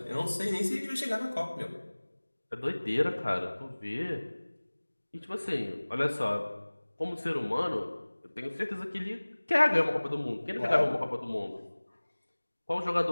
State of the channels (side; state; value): both; inverted; correlation -1.00